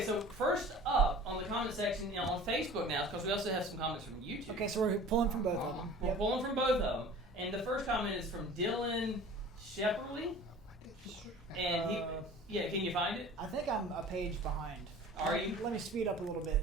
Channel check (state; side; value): normal; both; correlation 0.43